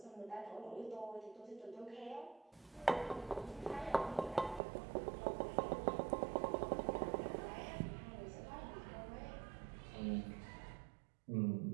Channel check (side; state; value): left; drops out; at 4.6 s